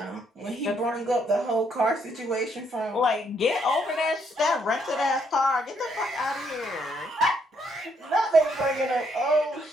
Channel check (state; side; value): normal; both; correlation 0.72